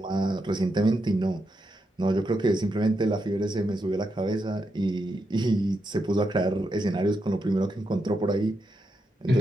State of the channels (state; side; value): normal; both; correlation 0.84